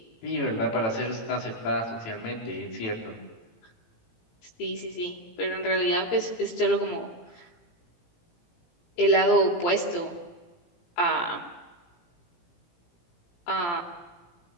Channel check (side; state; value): right; late; 17 ms